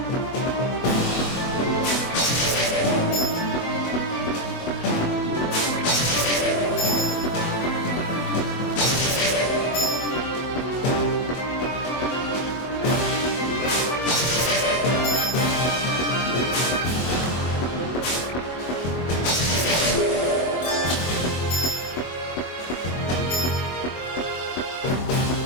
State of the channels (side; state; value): right; late; 24 ms